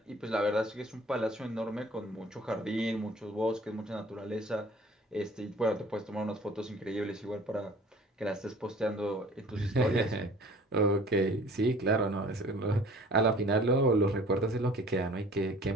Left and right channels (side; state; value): both; normal; correlation 0.50